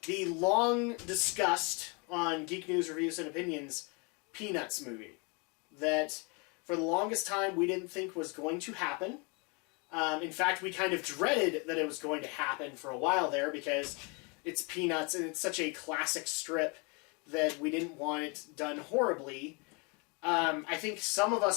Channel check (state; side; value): quieter; right; 31.7 dB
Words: the long-discussed, on Geek News Reviews and Opinions, Peanuts movie. That, for the longest time, we didn't think was going to happen. In fact, we kind of dreaded that it was going to happen for a while there, because it's Peanuts, and it's such a classic strip that we didn't want it done horribly. I think some of